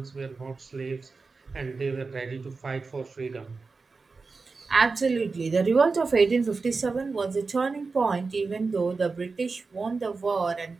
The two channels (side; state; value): left; quieter; 4.3 dB